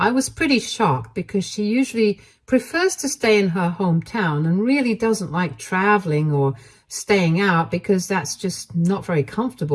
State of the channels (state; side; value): identical; both; correlation 1.00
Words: was pretty shocked because she usually prefers to stay in her hometown and really doesn't like traveling or staying out because that's just not very